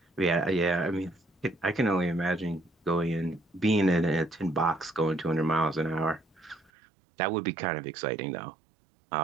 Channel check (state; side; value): drops out; left; at 6.7 s